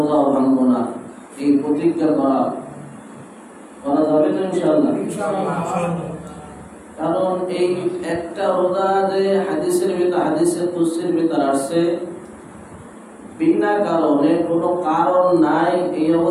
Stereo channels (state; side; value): identical; both; correlation 1.00